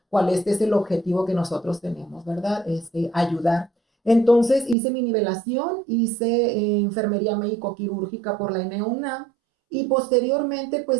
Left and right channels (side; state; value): left; drops out; at 4.8 s